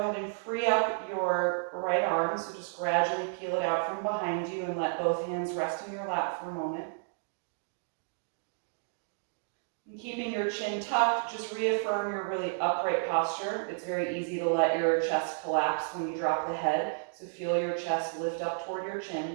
and free up your right arm, so just gradually peel it out from behind you and let both hands rest in your lap for a moment. And keeping your chin tucked, just reaffirm your really upright posture. It's very easy to let your chest collapse when you drop the head, so feel your chest lift up toward your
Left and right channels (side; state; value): left; silent; digital silence